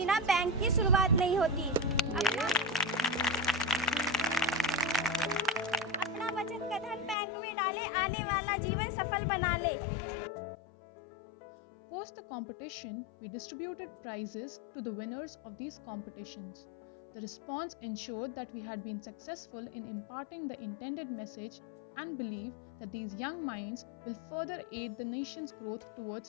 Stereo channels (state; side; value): drops out; right; at 7.2 s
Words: बैंक की शुरुआत नहीं होती। में डाले, आने वाला जीवन सफल बना ले। Post the competition, we distributed prizes to the winners of these competitions. The response ensured that we had been successful in imparting the intended message and believe that these young minds will further aid the nation's growth